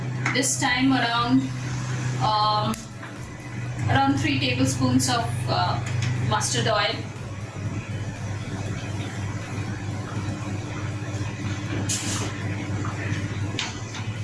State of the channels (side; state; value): both; identical; correlation 1.00